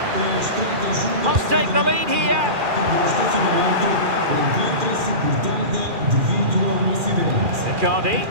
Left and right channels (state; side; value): late; left; 2.4 ms